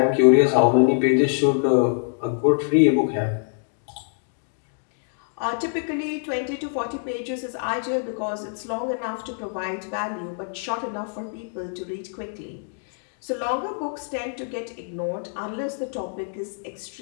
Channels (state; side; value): silent; right; digital silence